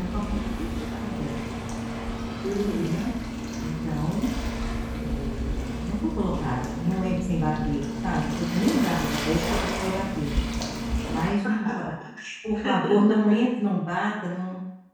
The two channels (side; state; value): both; identical; correlation 1.00